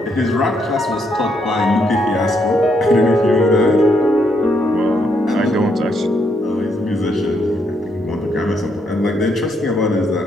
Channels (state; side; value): normal; both; correlation 0.76